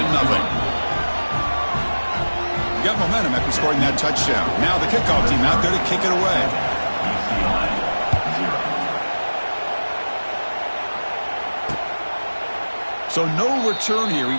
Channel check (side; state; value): both; inverted; correlation -1.00